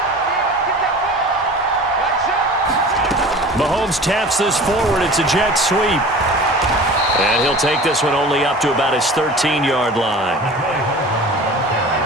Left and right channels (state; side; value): normal; both; correlation 0.40